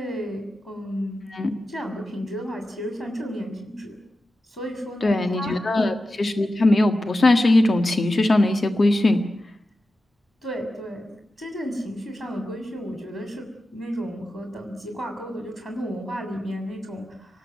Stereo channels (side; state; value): both; normal; correlation 0.92